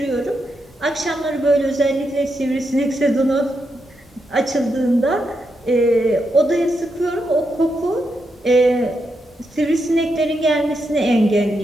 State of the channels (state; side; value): normal; both; correlation 0.83